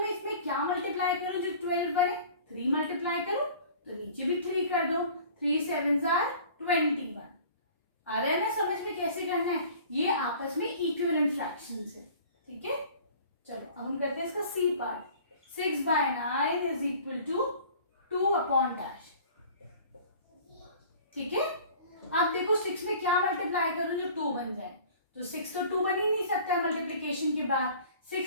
में इसमें क्या मल्टीप्लाई करूं जो 12 बने? 3 मल्टीप्लाई करूं, तो नीचे भी 3 कर दो। 3 7s are 21। आ रहा है ना समझ में कैसे करना है? ये आपस में इक्विवेलेंट फ्रैक्शंस है। ठीक है, चलो अब हम करते हैं इसका C part. 6/9 is equal to 2 upon dash. ठीक है, अब देखो 6 में क्या मल्टीप्लाई करूं जो 2 बन जाए? तो 6 तो 2 बन ही नहीं सकता मल्टीप्लिकेशन के बाद।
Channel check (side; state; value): both; inverted; correlation -0.47